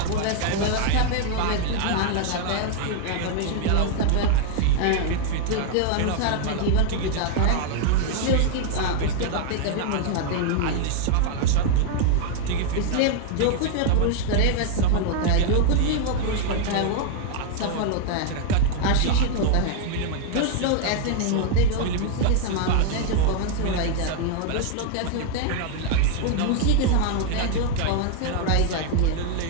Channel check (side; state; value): both; different; correlation 0.00